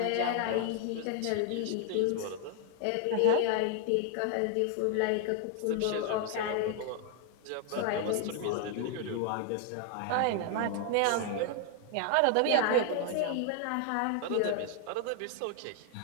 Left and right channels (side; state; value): both; different; correlation 0.00